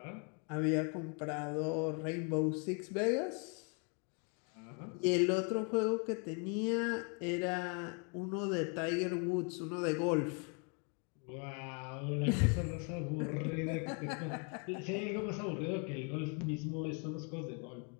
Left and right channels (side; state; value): right; quieter; 37.5 dB